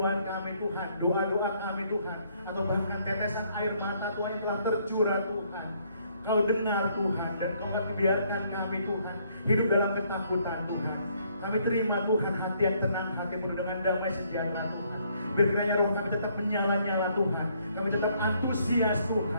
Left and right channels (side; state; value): both; inverted; correlation -0.68